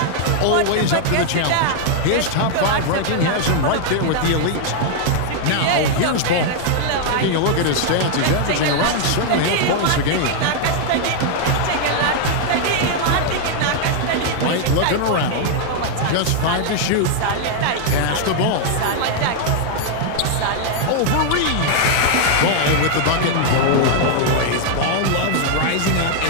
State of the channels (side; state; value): both; different; correlation 0.00